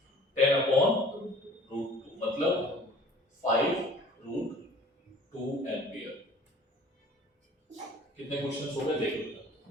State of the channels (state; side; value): normal; both; correlation 0.49